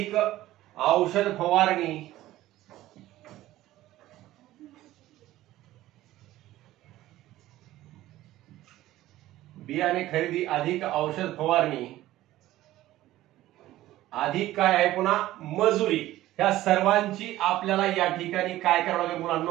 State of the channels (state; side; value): quieter; left; 15.4 dB